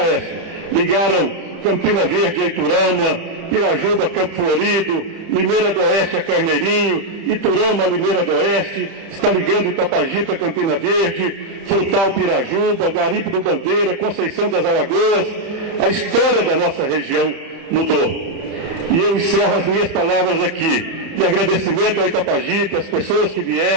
ligaram Campina Verde a Iturama, Pirajuba a Campo Florido, Limeira do Oeste a Carneirinho, Iturama a Limeira do Oeste, está ligando Itapajipe a Campina Verde, Frutal Pirajuba, Garimpo do Bandeira, Conceição das Alagoas. A história da nossa região mudou. E eu encerro as minhas palavras aqui, de agradecimento a Itapajipe, as pessoas que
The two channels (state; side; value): late; left; 31 ms